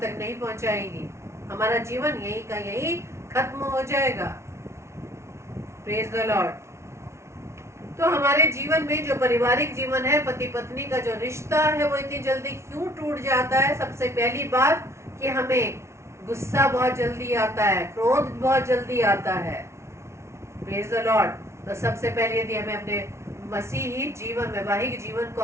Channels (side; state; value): left; late; 0.13 ms